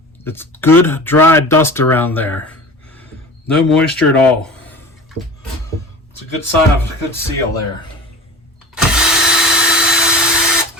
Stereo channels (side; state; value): both; normal; correlation 0.36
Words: It's good dry dust around there. No moisture at all. It's a good sign of a good seal there.